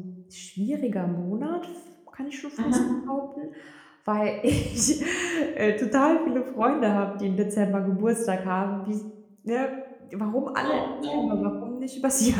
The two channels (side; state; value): both; identical; correlation 1.00